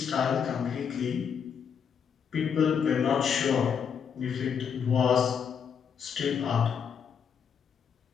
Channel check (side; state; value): right; quieter; 7.2 dB